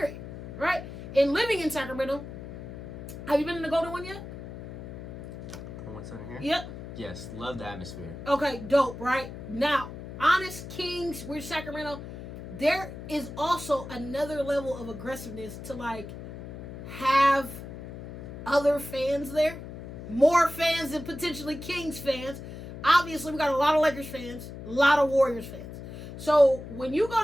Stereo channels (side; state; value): left; noise; hum, 11 dB below the sound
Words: Right? And living in Sacramento, have you been in the Golden one yet? What's in here? Yep. Yes, love the atmosphere. Okay, dope, right? Now, Honest Kings, we're Sacramento. There is also another level of aggressiveness to, like, have other fans there. More fans than potentially Kings fans. Obviously, we got a lot of Lakers fans, a lot of Warriors fans. So, when you